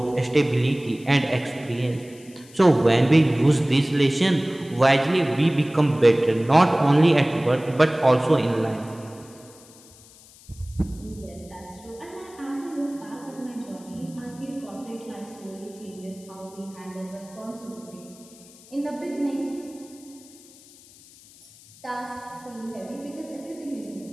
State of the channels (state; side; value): noise; left; hiss, 23 dB below the sound